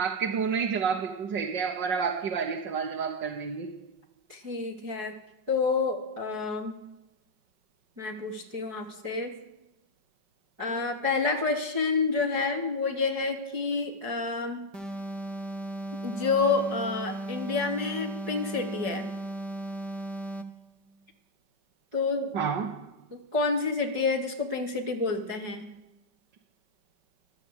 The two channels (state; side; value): late; left; 4.7 ms